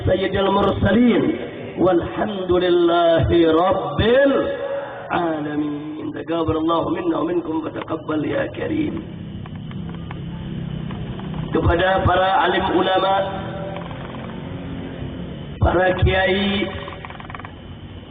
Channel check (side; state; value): both; identical; correlation 1.00